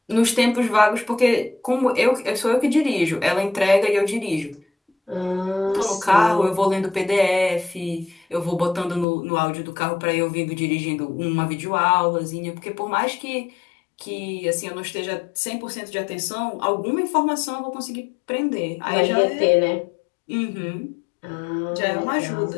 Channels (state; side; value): drops out; right; at 9.1 s